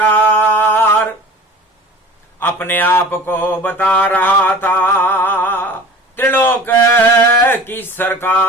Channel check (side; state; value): both; normal; correlation 0.41